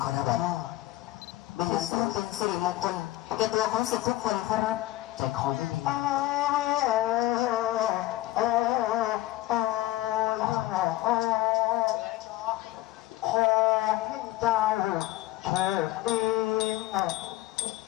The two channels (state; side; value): quieter; right; 16.5 dB